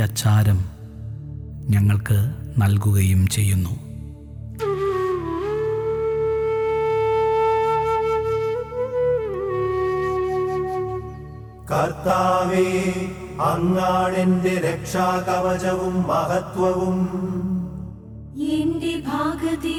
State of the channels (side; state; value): both; identical; correlation 1.00